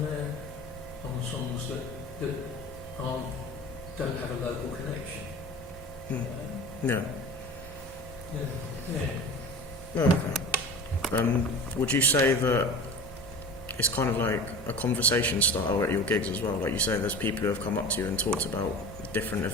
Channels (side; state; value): both; normal; correlation 0.35